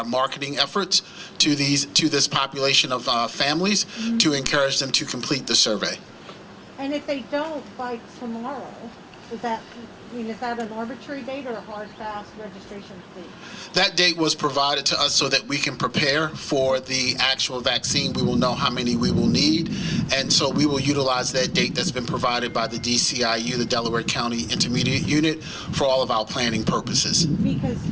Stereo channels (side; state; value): both; identical; correlation 1.00